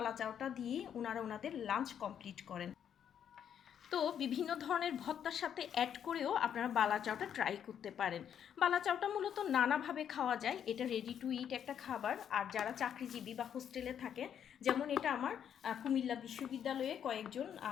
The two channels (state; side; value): quieter; right; 8.9 dB